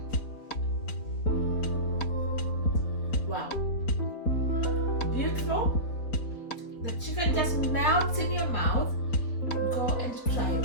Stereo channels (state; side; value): late; right; 4.4 ms